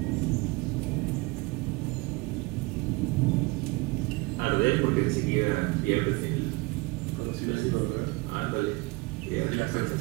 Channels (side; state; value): left; quieter; 24.6 dB